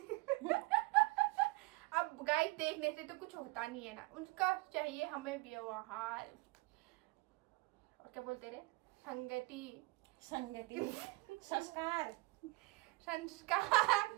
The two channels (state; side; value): quieter; left; 23.9 dB